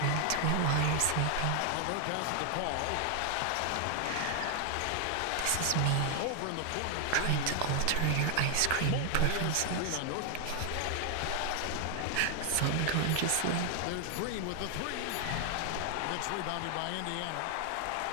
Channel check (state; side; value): different; both; correlation 0.00